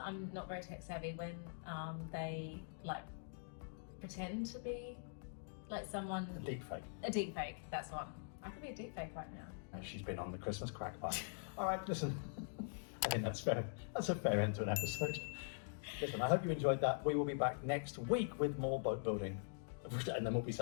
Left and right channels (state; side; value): silent; right; digital silence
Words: I'm not very tech savvy, when they like pretend to be like someone. A deep fake. A deep fake, that's one. I could be a deep fake right now. She's been on the Christmas crack pipe. All right, listen. I think that's fair. That's a fair end to an episode. Listen, I hope you enjoyed that. We will be back next week with more boat building, and then we'll be